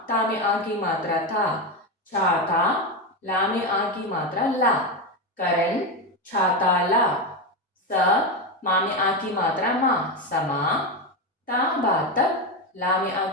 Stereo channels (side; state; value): both; normal; correlation 0.13